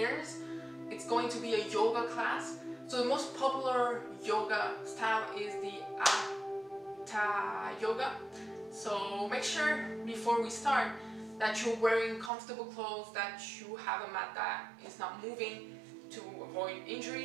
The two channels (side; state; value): left; drops out; at 12.3 s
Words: It's going to be a yoga class. So the most popular yoga style is the Hatha yoga. So make sure before we start that you're wearing comfortable clothes, that you have a mat that is not moving to avoid